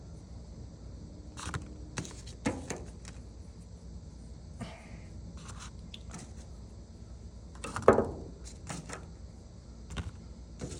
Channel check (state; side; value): identical; both; correlation 1.00